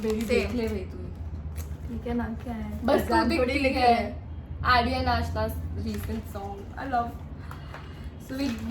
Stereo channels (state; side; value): identical; both; correlation 1.00